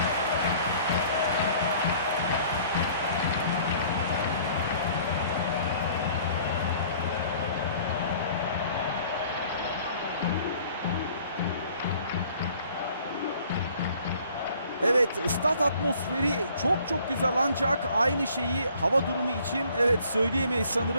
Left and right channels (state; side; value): inverted; both; correlation -0.55